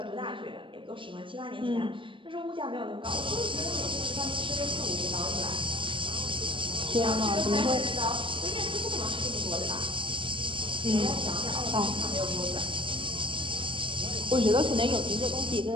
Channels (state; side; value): late; left; 0.25 ms